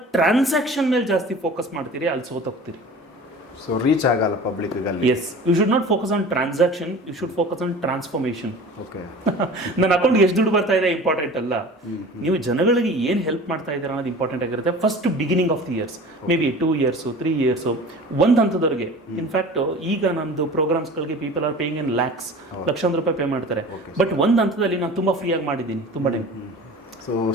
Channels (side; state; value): both; normal; correlation 0.40